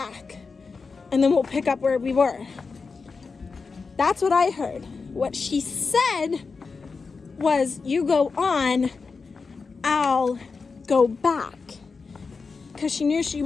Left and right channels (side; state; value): right; quieter; 4.7 dB